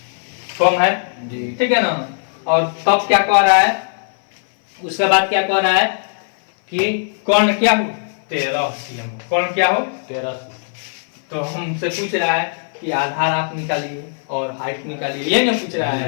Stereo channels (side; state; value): right; silent; 59 dB below the other